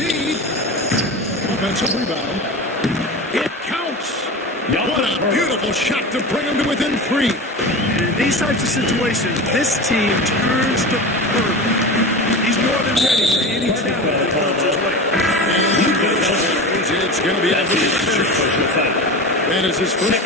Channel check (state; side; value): normal; both; correlation 0.28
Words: Offensive rebound. It counts. What a beautiful shot to bring him to within 3. In these types of situations, this team turns to purple. He's more than ready for anything that comes his way. It's going to be a that is his first